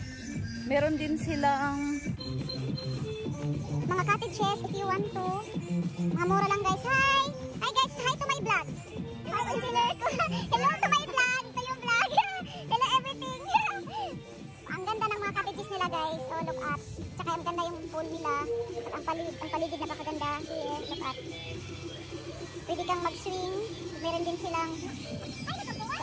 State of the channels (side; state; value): both; identical; correlation 1.00